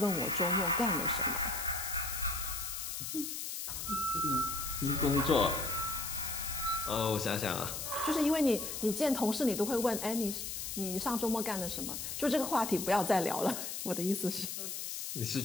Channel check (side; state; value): left; noise; hiss, 5 dB below the sound